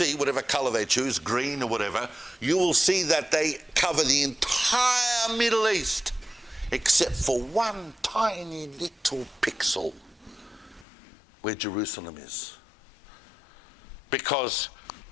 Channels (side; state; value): right; drops out; at 10.9 s